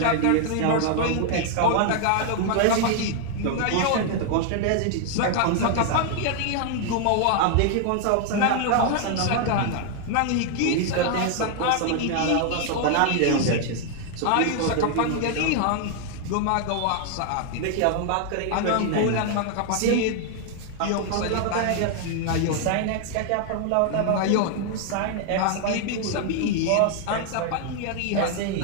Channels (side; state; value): both; different; correlation 0.00